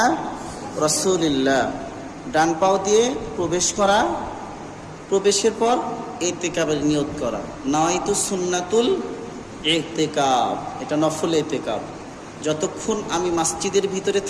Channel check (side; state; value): both; identical; correlation 1.00